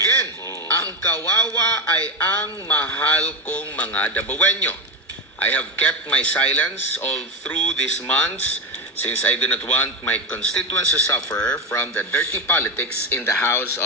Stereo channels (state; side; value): normal; both; correlation 0.14